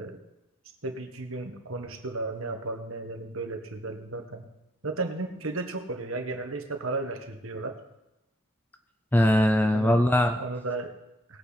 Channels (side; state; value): both; normal; correlation 0.70